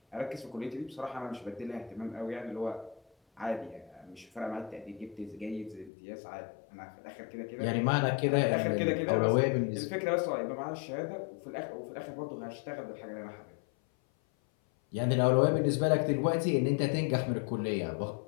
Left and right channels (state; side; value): drops out; right; at 5.9 s